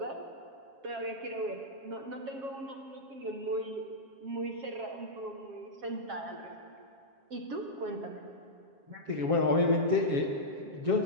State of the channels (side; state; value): left; late; 7.4 ms